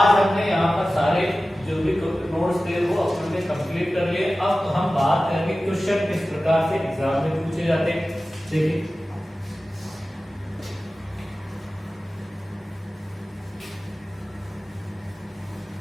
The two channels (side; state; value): both; normal; correlation 0.96